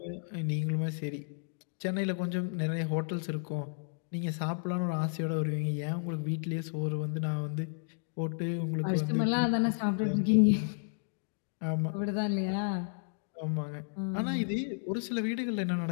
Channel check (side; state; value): right; silent; digital silence